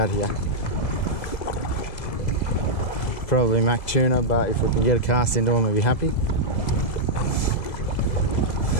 here. Probably Mac tuna, but if we can get a cast into them, we'll be happy.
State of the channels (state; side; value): late; right; 2.0 ms